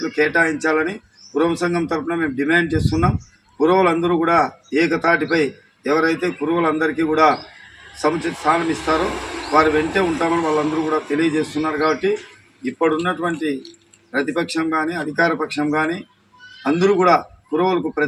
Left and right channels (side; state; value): both; identical; correlation 1.00